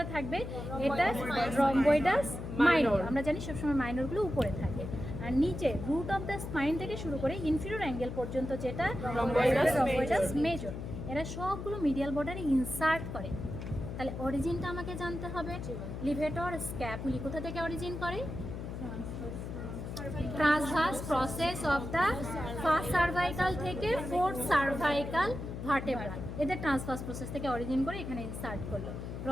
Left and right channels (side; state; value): left; noise; hum, 7 dB below the sound